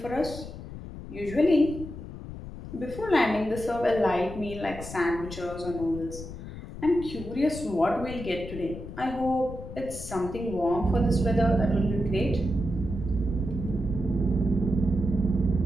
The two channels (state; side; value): noise; left; rumble, 11 dB below the sound